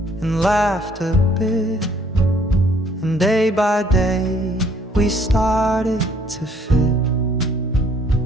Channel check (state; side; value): normal; both; correlation 0.61